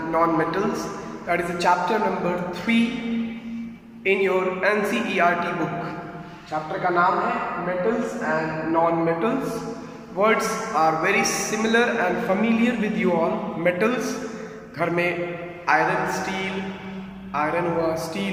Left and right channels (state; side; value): identical; both; correlation 1.00